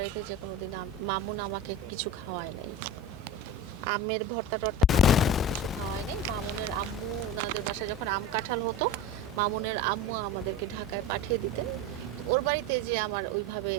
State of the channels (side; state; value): both; normal; correlation 0.29